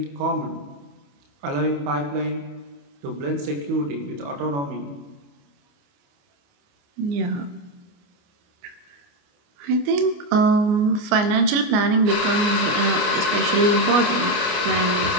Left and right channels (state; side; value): late; left; 28 ms